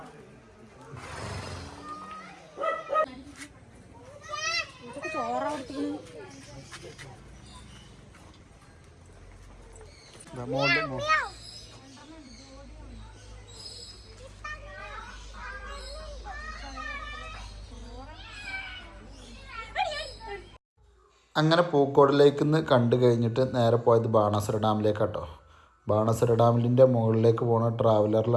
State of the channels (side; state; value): both; identical; correlation 1.00